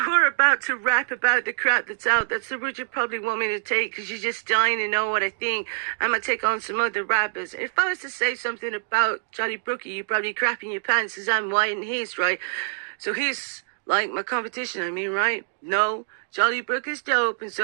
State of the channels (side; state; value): left; silent; digital silence